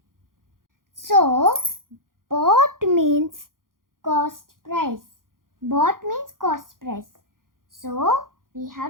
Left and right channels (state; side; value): late; left; 0.91 ms